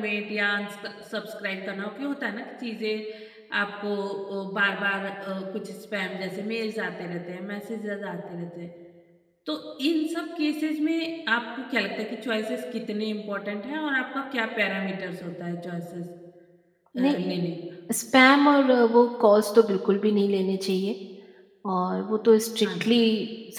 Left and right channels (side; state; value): both; identical; correlation 1.00